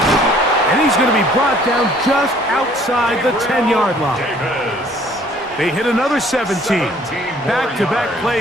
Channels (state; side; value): normal; both; correlation 0.58